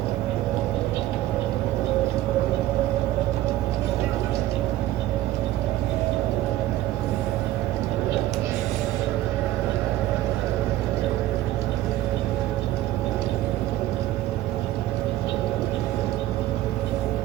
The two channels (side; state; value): left; quieter; 14.7 dB